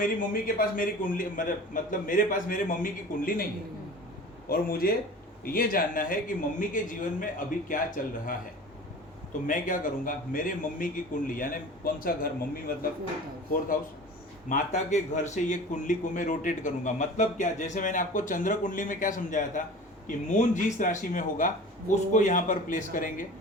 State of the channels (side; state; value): both; normal; correlation 0.39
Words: मम्मी के पास मेरी कुंडली, मतलब मेरे पास मेरे मम्मी की कुंडली नहीं है और मुझे ये जानना है कि मम्मी के जीवन में अभी क्या चल रहा है। तो मैं क्या करूँगा, मेरे मम्मी की कुंडली, यानी कौन सा घर, मम्मी मतलब 4th हाउस, माता के घर से ये कुंडली को मैं रोटेट करूंगा। मतलब क्या, जैसे मैंने आपको चंद्र कुंडली में क्या समझाया था कि मून जिस राशि में होगा उसको यहाँ पर प्लेस करेंगे,